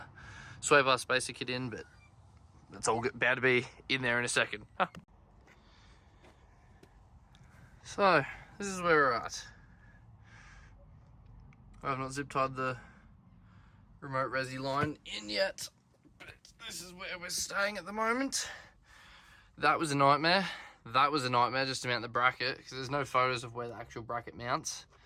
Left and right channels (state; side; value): identical; both; correlation 1.00